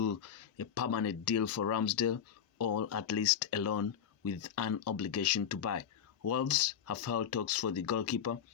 a permanent deal for Ramsdale, or at least a loan with an obligation to buy. Wolves have held talks for the goalkeeper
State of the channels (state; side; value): quieter; right; 8.5 dB